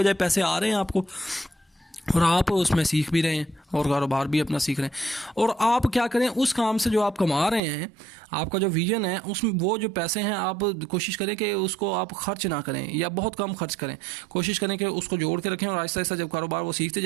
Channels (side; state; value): left; drops out; at 7.6 s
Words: पैसे आ रहे हैं आपको, और आप उसमें सीख भी रहे हैं और कारोबार भी अपना सीख रहे हैं। और आप क्या करें, उस काम से जो आप कमा रहे हैं, आपका जो विजन है उसमें वो जो पैसे हैं आप कोशिश करें कि उसको आप खर्च ना करें या बहुत कम खर्च करें, कोशिश करें कि उसको जोड़ के रखें, और आहिस्ता आहिस्ता जब कारोबार वो सीखते